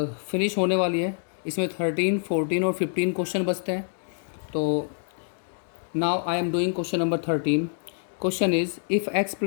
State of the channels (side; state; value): right; silent; digital silence